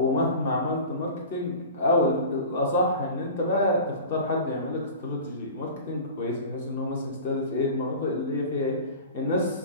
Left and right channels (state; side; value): inverted; both; correlation -0.36